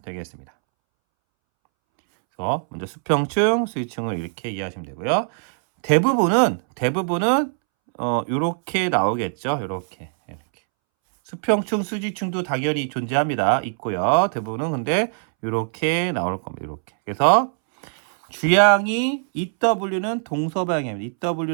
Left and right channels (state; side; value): silent; left; 64 dB below the other